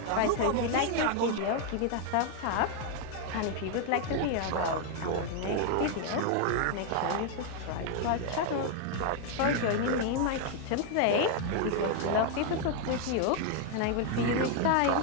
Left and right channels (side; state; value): both; different; correlation 0.00